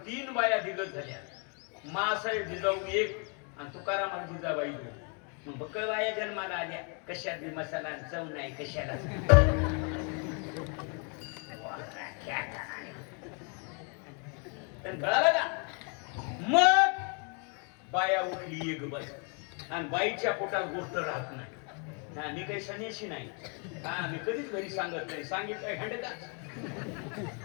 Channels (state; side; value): quieter; right; 37.6 dB